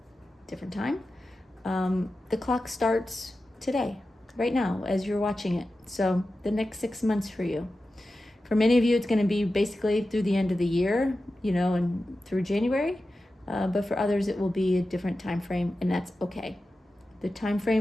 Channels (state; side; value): normal; both; correlation 0.93